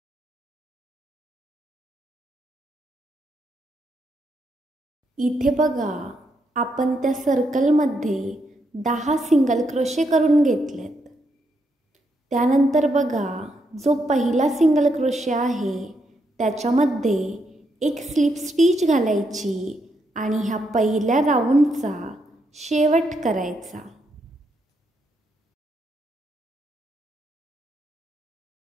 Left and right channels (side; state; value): both; normal; correlation 0.79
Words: इथे बघा आपण त्या सर्कलमध्ये 10 सिंगल क्रोशे करून घेतलेत. त्यानंतर बघा जो पहिला सिंगल क्रोशे आहे त्याच्यामध्ये एक स्लिप स्टिच घालायची आणि ह्या पहिल्या राऊंडचा शेवट करायचा.